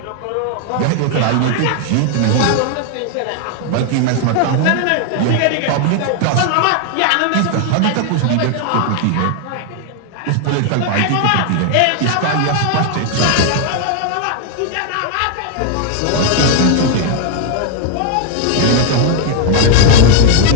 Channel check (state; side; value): different; both; correlation 0.00